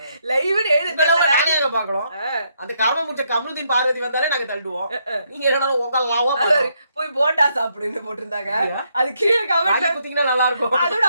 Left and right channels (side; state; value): both; inverted; correlation -0.75